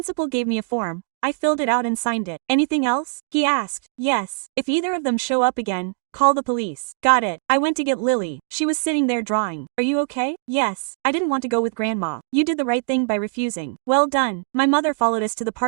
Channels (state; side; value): silent; left; digital silence